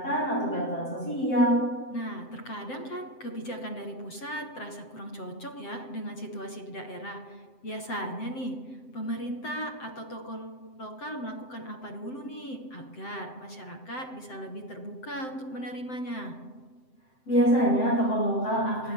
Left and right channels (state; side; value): late; right; 7.7 ms